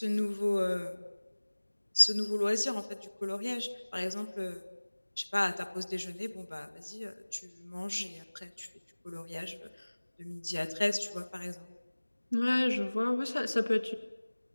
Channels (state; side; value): inverted; both; correlation -1.00